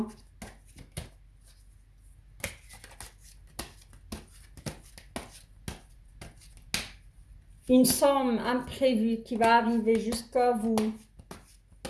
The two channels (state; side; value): identical; both; correlation 1.00